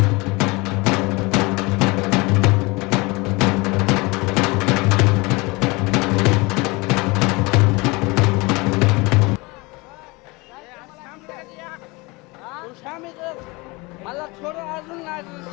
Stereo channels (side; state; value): right; quieter; 25.1 dB